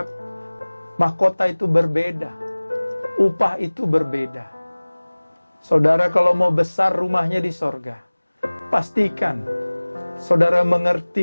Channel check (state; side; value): inverted; both; correlation -1.00